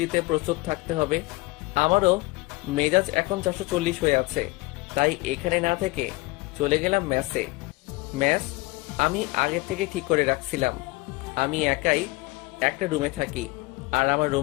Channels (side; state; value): right; quieter; 22.6 dB